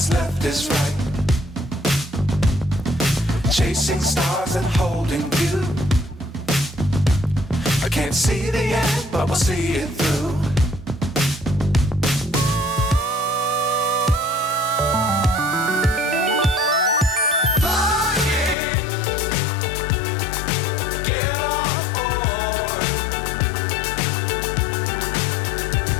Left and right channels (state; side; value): drops out; right; at 18.6 s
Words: left is right. Chasing stars and holding you. I can't see the end, but we'll see it through.